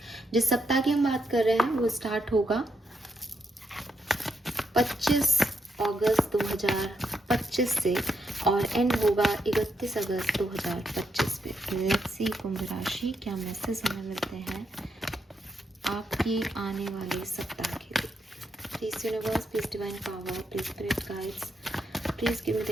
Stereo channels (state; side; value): normal; both; correlation 0.80